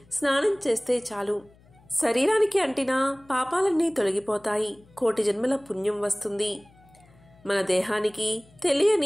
స్నానం చేస్తే చాలు. శరీరానికి అంటిన పాపాలన్నీ తొలగిపోతాయి. కోటి జన్మల పుణ్యం వస్తుంది. మన దేహానికి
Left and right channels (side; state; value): left; noise; hum, 28 dB below the sound